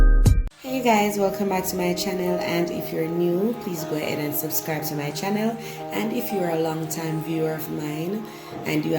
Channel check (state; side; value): identical; both; correlation 1.00